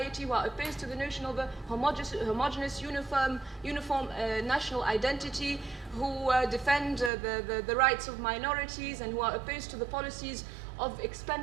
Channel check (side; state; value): left; drops out; at 7.1 s